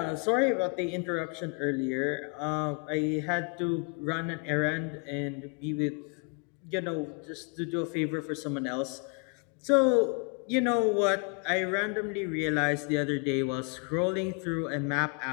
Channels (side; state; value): right; quieter; 35.2 dB